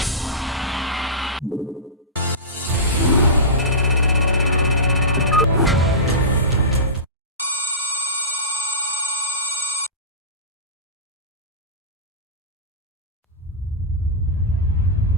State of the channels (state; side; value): normal; both; correlation -0.19